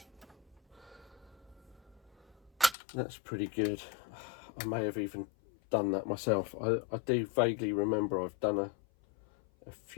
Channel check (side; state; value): right; drops out; at 2.8 s